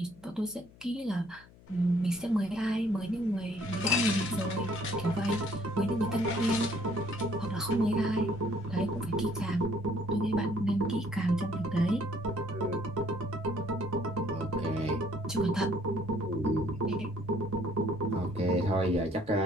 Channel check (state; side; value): noise; left; hum, 24 dB below the sound